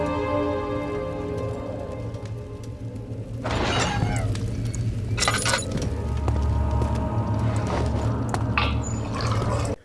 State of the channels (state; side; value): identical; both; correlation 1.00